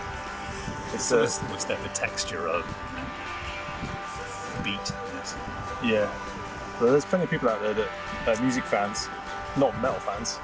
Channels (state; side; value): identical; both; correlation 1.00